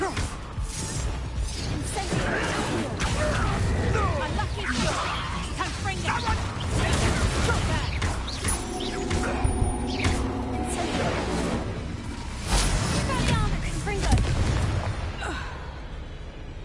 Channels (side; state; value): both; identical; correlation 1.00